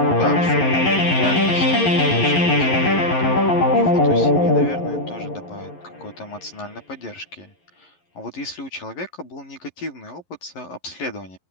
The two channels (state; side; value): late; right; 11 ms